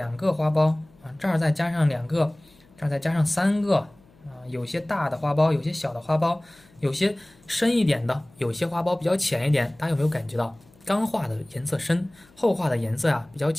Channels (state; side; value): noise; left; hum, 29 dB below the sound